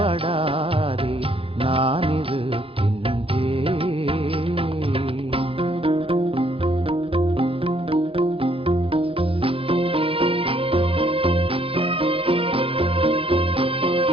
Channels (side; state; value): left; late; 0.27 ms